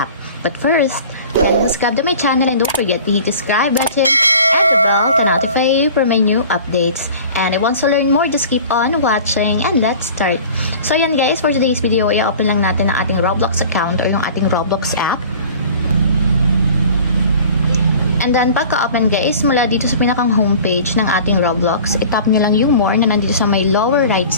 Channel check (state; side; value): inverted; both; correlation -0.43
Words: But first, kindly subscribe to my channel and don't forget to hit the subscribe button and the bell to notify you for my new updates. And if you want to learn more, just keep on watching and let's start. So yan guys, for today's video, i-open lang natin ang ating Roblox account or yung ating Roblox app. And then, pagka-open guys, mula dito sa pinakang homepage ng ating Roblox, itap nyo lang yung more na nandito sa may lower right